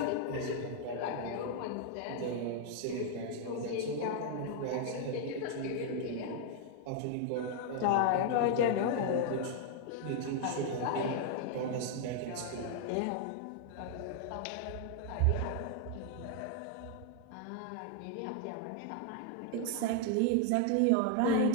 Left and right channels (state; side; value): different; both; correlation 0.00